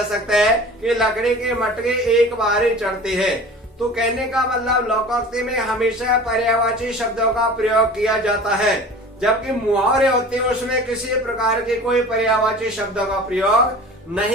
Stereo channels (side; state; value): both; normal; correlation 0.40